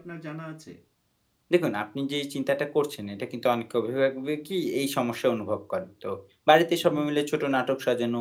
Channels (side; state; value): both; identical; correlation 1.00